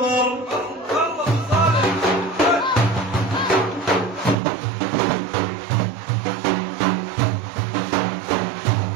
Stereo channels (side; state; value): left; drops out; at 4.4 s